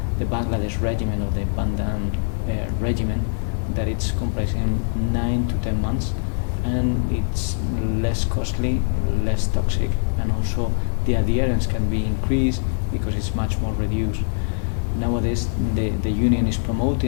the Bangladesh regimen or the Bandan regimen, that it's comprising 9 to 10 months, and it's less costly, less toxic, and also the adherence can be increased because it's much more reduced. Nowadays, the union is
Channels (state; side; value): silent; right; digital silence